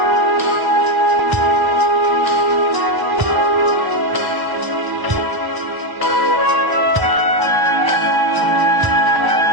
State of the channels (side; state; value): left; late; 1.0 ms